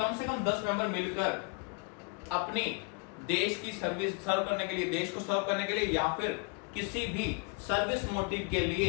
से कम 10 मेंबर मिलकर अपनी देश की सर्विस सर्व करने के लिए, देश को सर्व करने के लिए या फिर किसी भी सर्विस मोटिव के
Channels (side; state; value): right; quieter; 33.5 dB